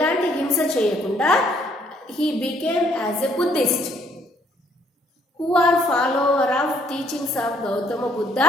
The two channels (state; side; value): normal; both; correlation 0.66